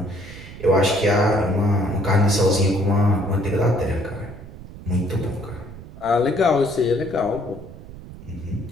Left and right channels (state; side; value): noise; right; rumble, 16 dB below the sound